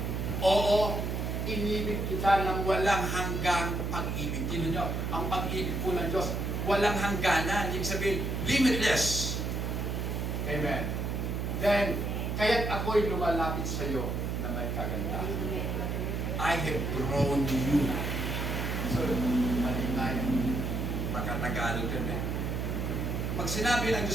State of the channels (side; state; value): right; noise; hum, 1 dB below the sound